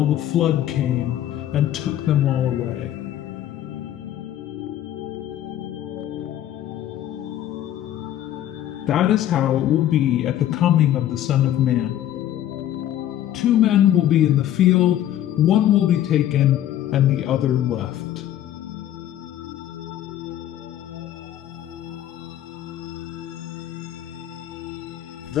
the flood came and took them all away. That is how it will be at the coming of the Son of Man. 2 men will be in the field, one will be taken, and the other left.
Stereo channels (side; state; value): right; quieter; 12.0 dB